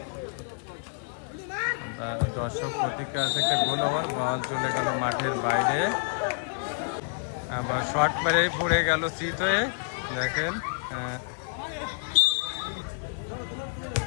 দর্শক প্রতিক্রিয়া আছে, একটা গোল ওভার, বল চলে গেল মাঠের বাইরে। আবার শট মেরে পড়ে গেল চিত হয়ে। দেখেন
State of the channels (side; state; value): right; silent; digital silence